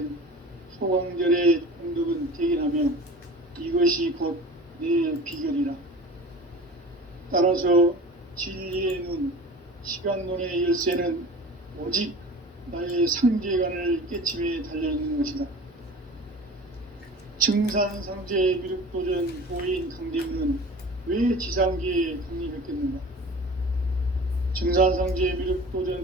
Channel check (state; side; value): normal; both; correlation 0.39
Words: 소강절의 공덕은 대견하며 이것이 곧 내 비결이라. 따라서 진리의 눈, 시간론의 열쇠는 오직 나의 상제관을 깨침에 달려있는 것이다. 증산상제 미륵도전 도인 강대문은 왜 지상계에 강림했겠는가? 증산상제